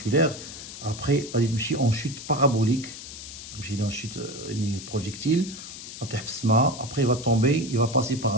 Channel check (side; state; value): left; noise; hiss, 12 dB below the sound